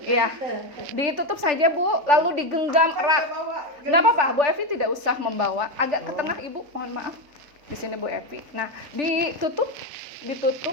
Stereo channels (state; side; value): late; left; 3.4 ms